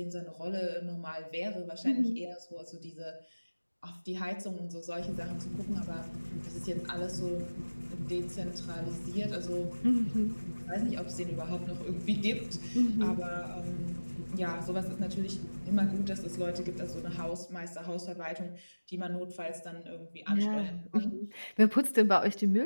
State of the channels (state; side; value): inverted; both; correlation -1.00